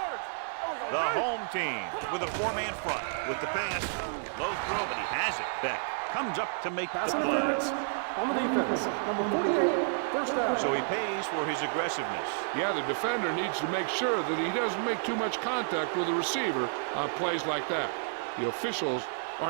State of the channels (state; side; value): silent; left; digital silence